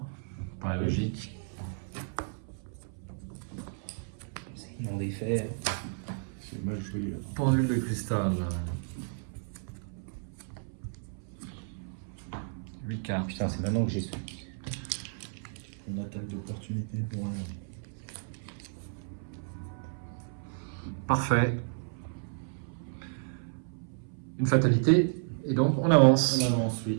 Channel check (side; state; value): left; silent; 56 dB below the other